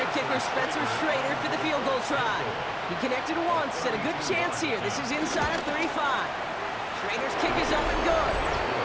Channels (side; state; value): both; identical; correlation 1.00